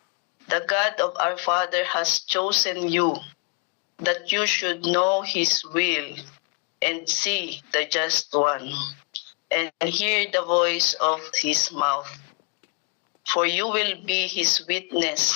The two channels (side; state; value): right; quieter; 33.3 dB